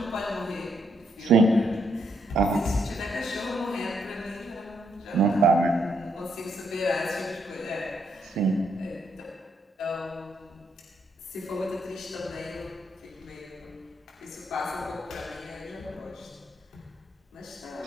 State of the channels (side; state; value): both; normal; correlation 0.75